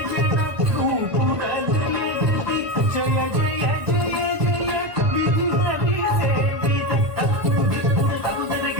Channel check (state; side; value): late; left; 1.5 ms